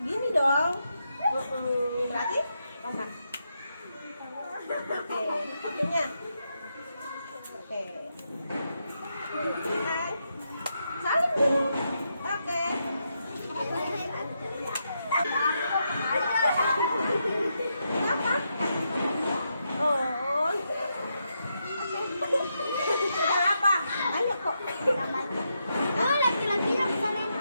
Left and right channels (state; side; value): inverted; both; correlation -0.83